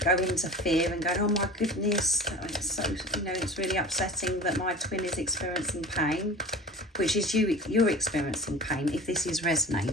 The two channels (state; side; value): normal; both; correlation 0.38